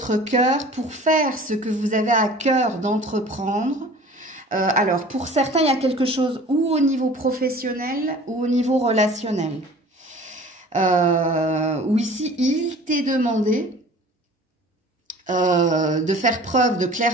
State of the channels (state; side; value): normal; both; correlation 0.45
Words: cœur, pour faire ce que vous avez à cœur d'entreprendre. Alors, pour certains, il y a quelque chose ou au niveau professionnel ou au niveau relationnel. Où ici, il t'est demandé de faire preuve de